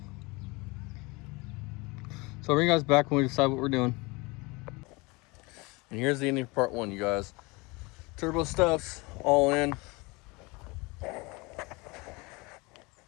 So I'll bring you guys back when we decide what we're doing. And here's the ending of part one, you guys. Turbo stuff's all in.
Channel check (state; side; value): quieter; right; 25.8 dB